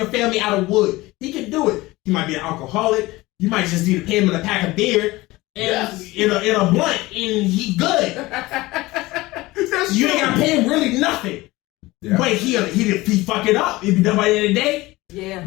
family out of wood. He can do it. He might be an alcoholic. You might just need to pay him in a pack of beer and in a blunt, and he good. You ain't got to pay him really nothing. Yeah. But he fuck it up. It'd be done by the end of the day. Yeah.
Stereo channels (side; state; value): right; quieter; 20.0 dB